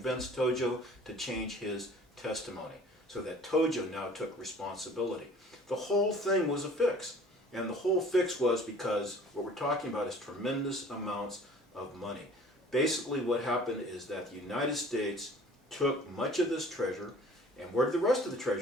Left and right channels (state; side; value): normal; both; correlation 0.49